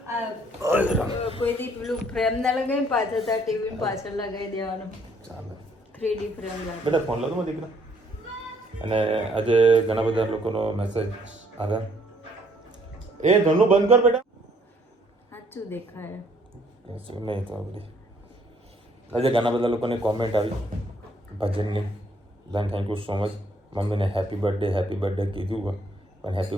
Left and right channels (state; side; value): normal; both; correlation 0.65